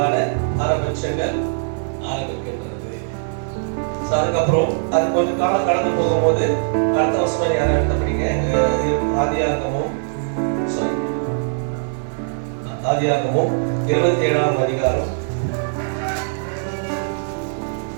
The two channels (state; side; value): silent; left; 64 dB below the other